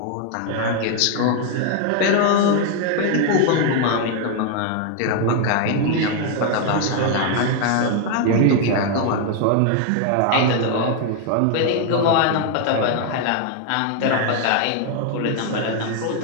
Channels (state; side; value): different; both; correlation 0.00